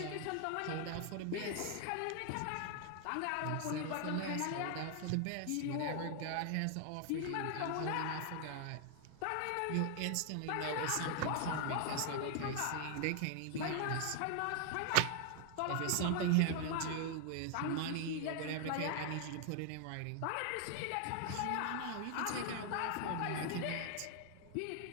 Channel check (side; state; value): both; different; correlation 0.00